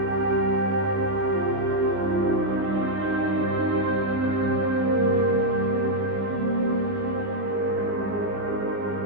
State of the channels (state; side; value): late; left; 20 ms